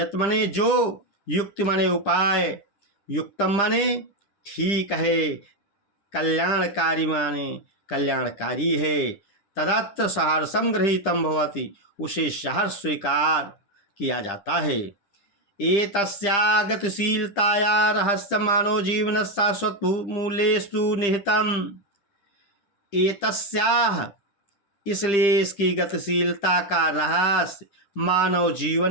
माने जो, युक्ति माने उपाय, युक्तम माने ठीक है, कल्याणकारी माने कल्याणकारी है, तदत्र सहर्षम गृहीतम भवति, उसे सहर्ष स्वीकार किया जाता है। एतस्या गतिशीलताया रहस्य मानव जीवन शाश्वत मूल्येषु निहितम। एतस्याः, इसलिए इसकी गतिशीलता का रहस्य मानव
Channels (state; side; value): late; right; 10 ms